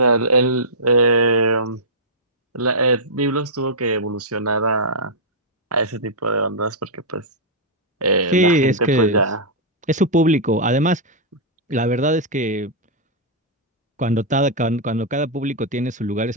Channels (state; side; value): normal; both; correlation -0.10